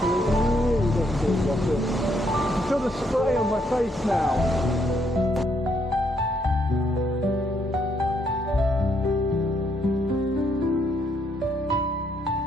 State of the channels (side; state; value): both; normal; correlation 0.73